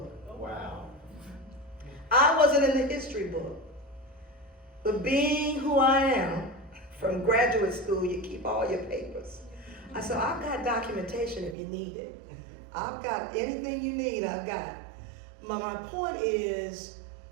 Wow. I wasn't in the history book. But being who I am, from graduate school, you keep all your papers. I said, I've got documentation if you need it. I've got anything you need, I've got. My point is,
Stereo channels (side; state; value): left; drops out; at 11.6 s